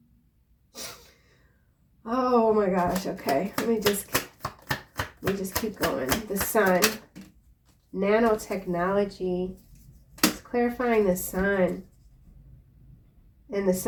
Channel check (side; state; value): both; identical; correlation 1.00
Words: Oh my gosh. Okay, let me just keep going. The sun, nanotechnology. It's clarifying the sun, and the